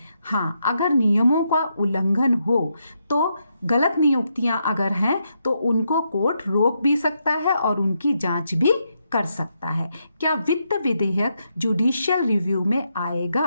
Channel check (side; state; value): both; inverted; correlation -0.80